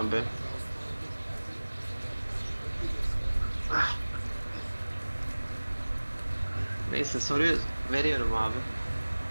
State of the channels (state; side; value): inverted; both; correlation -1.00